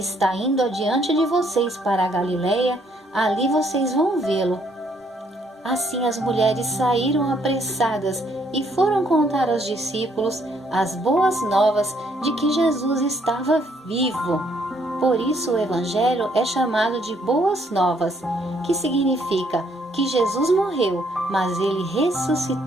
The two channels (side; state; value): both; normal; correlation 0.68